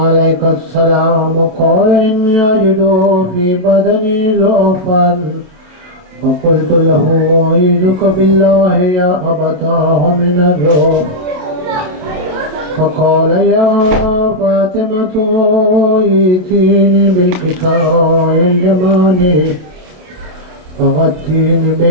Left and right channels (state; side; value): late; left; 28 ms